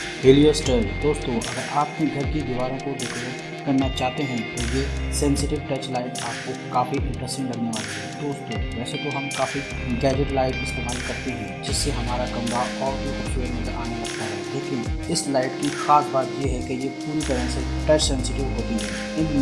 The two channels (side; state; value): both; identical; correlation 1.00